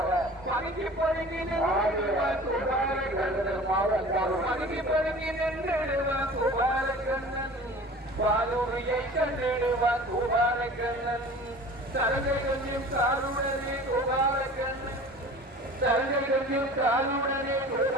பதுங்கி பதுங்கி நின்றுடுவான் கோபாலக்கண்ணன் பாலூரியை கண்டிடுவான் கோபாலக்கண்ணன் சரகை கொஞ்சம் காலுடனே கோபாலக்கண்ணன் சரகை கொஞ்சம் காலுடனே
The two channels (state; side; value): normal; both; correlation 0.42